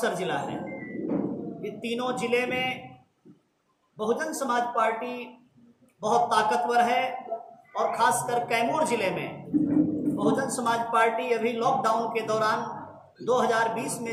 जिला है। ये तीनों जिले में बहुजन समाज पार्टी बहुत ताकतवर है और खासकर कैमूर जिले में बहुजन समाज पार्टी अभी लॉकडाउन के दौरान 2020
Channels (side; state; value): both; identical; correlation 1.00